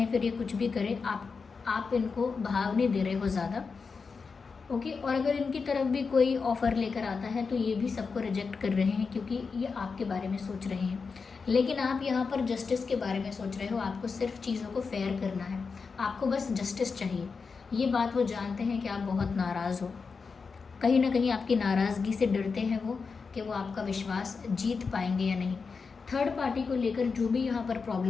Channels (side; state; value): right; quieter; 5.0 dB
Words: फिर ये कुछ भी करें, आप इनको भाव नहीं दे रहे हो ज़्यादा, ओके। और अगर इनकी तरफ भी कोई ऑफ़र लेकर आता है तो ये भी सबको रिजेक्ट कर रहे हैं, क्योंकि ये आपके बारे में सोच रहे हैं। लेकिन आप यहाँ पर जस्टिस के बारे में सोच रहे हो, आपको सिर्फ चीज़ों को फेयर करना है, आपको बस जस्टिस चाहिए। ये बात वो जानते हैं कि आप बहुत नाराज़ हो, कहीं ना कहीं आपकी नाराज़गी से डरते हैं वो कि वो आपका विश्वास जीत पाएंगे या नहीं। थर्ड पार्टी को लेकर जो भी यहाँ पर